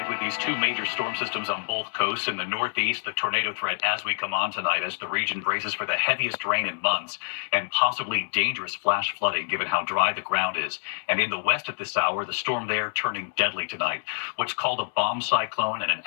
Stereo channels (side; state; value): right; silent; 60 dB below the other